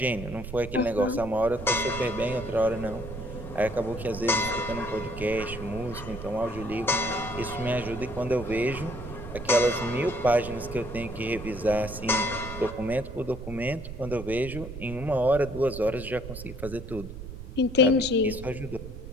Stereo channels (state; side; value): noise; right; rumble, 10 dB below the sound